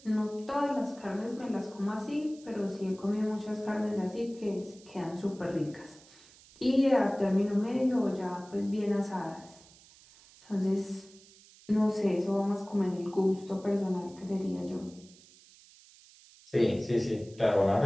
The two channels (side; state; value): right; noise; hiss, 24 dB below the sound